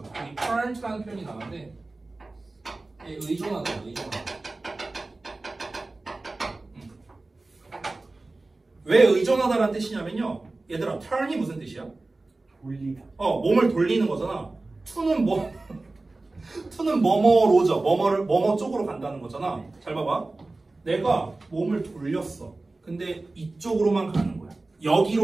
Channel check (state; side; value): quieter; left; 3.2 dB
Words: 여기 turn to라는 표현이 나왔는데 의존하다. 왜 의존하다라는 뜻이냐면요. 얘들아, turn이 무슨 뜻이야? 돌리다. 몸을 돌리는 거잖아. to는 to는 뭐뭐로죠. 뭐뭐 쪽으로 간다는 거잖아. 잘 봐봐. 내가 몸을 돌렸어. 근데 이쪽으로만 가는 거야.